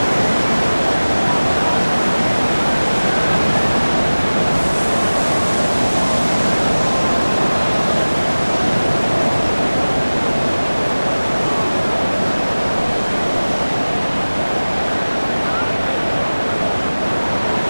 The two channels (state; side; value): inverted; both; correlation -1.00